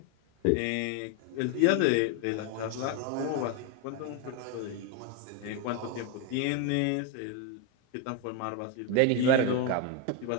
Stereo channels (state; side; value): different; both; correlation 0.02